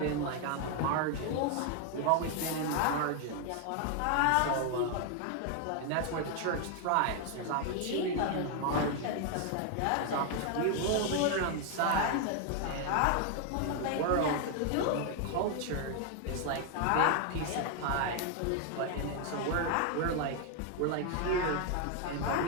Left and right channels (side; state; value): both; different; correlation 0.00